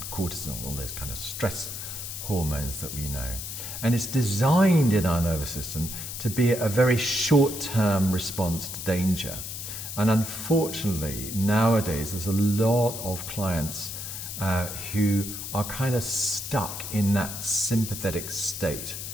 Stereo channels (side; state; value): left; noise; hiss, 7 dB below the sound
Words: cortisol, all those kind of stress hormones that we know. And it's designed in our nervous system to be a very short-term response to danger. And unfortunately, nowadays, there's a lot of clients who are kind of stuck in that sympathetic state,